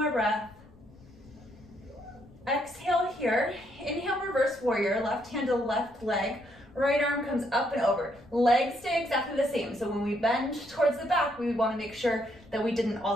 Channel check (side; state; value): left; noise; rumble, 26 dB below the sound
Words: breath. Exhale here. Inhale, reverse warrior, left hand to left leg. Right arm comes up and over. Legs stay exactly the same. So when we bend towards the back, we want to make sure that we didn't